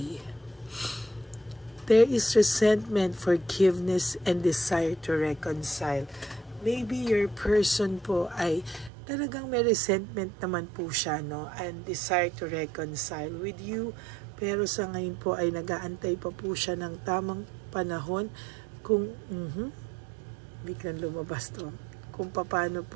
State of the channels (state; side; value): drops out; left; at 8.9 s